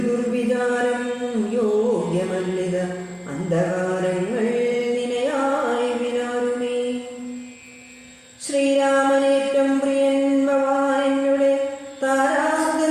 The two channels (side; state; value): both; identical; correlation 1.00